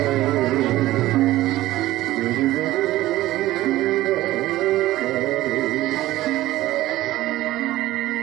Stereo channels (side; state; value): left; quieter; 16.1 dB